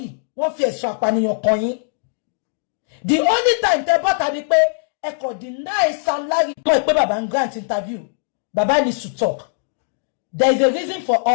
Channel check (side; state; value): right; silent; digital silence